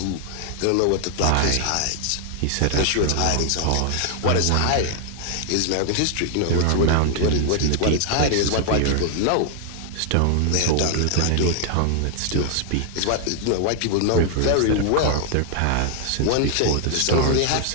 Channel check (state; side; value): different; both; correlation 0.00